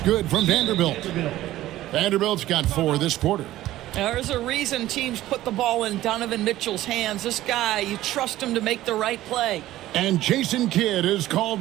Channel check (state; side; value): quieter; left; 15.0 dB